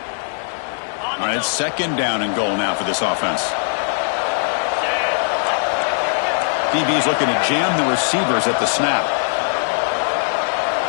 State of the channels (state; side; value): silent; right; 66 dB below the other